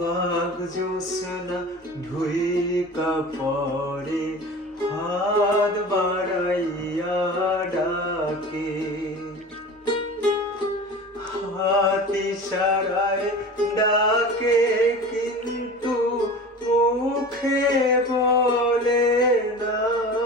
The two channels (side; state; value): both; normal; correlation 0.36